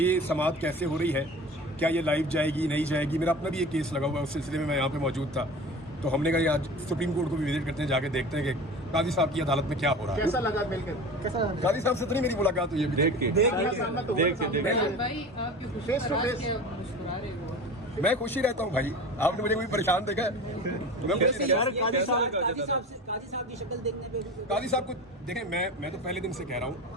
ये समाअत कैसे हो रही है, क्या ये लाइव जाएगी नहीं जाएगी। मेरा अपना भी एक केस लगा हुआ है, उस सिलसिले में मैं यहाँ पे मौजूद था। तो हमने कहा आज सुप्रीम कोर्ट को भी विजिट करते हैं, जाके देखते हैं कि काजी साहब की अदालत में क्या हो रहा है। कैसा लगा मिलकर? कैसा काजी साहब से तो नहीं मेरी मुलाकात हुई है देख के फेस टू फेस? मैं खुश ही रहता हूँ भाई, आपने मुझे कोई परेशान देखा है? मैं खुशी काजी साहब की शक्ल देखने पे काजी साहब को देखें, मैं तो पहले दिन से कह रहा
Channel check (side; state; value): both; normal; correlation 0.35